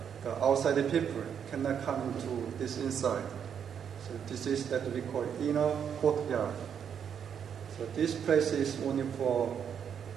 outside people cannot come into this inside. So this is that we call inner courtyard. So this place is only for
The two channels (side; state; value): left; quieter; 8.0 dB